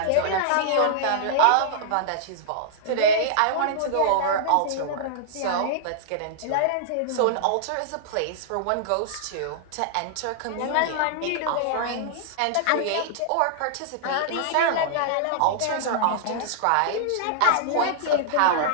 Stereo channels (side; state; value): both; different; correlation -0.01